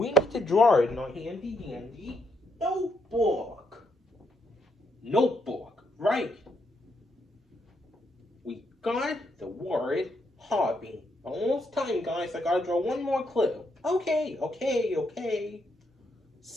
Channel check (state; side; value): normal; both; correlation 0.77